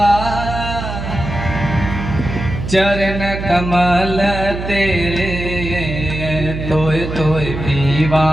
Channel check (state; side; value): noise; right; hum, 6 dB below the sound